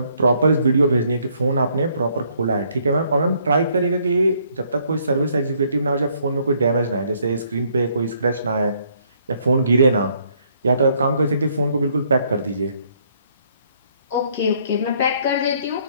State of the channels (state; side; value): inverted; both; correlation -0.67